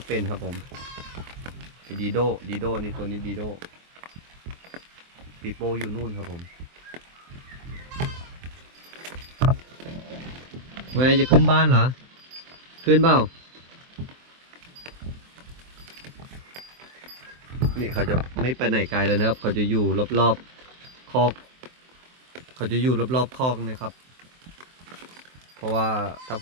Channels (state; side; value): late; left; 23 ms